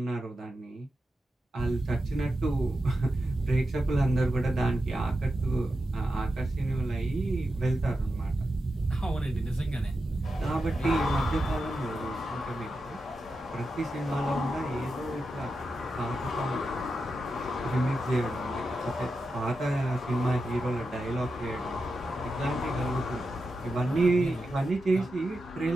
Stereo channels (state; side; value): normal; both; correlation 0.89